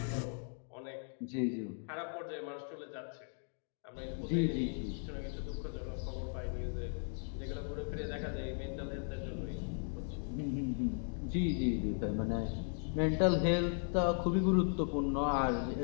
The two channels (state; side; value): silent; right; 53 dB below the other